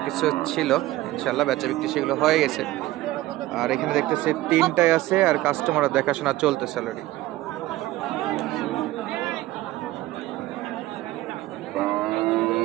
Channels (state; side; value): quieter; left; 16.9 dB